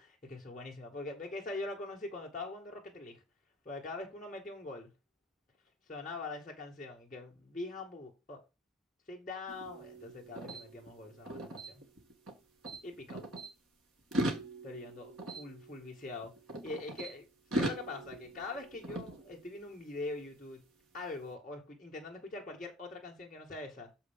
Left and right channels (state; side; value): normal; both; correlation 0.45